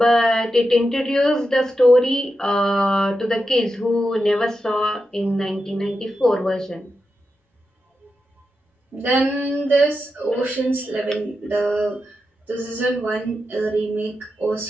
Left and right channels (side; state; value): both; normal; correlation 0.89